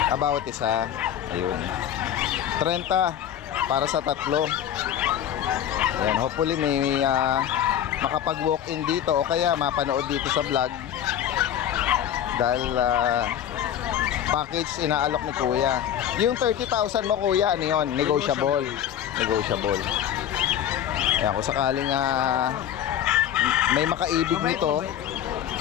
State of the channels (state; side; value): quieter; right; 10.2 dB